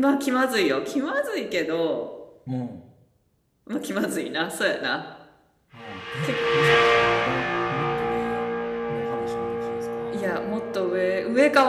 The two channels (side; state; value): both; identical; correlation 1.00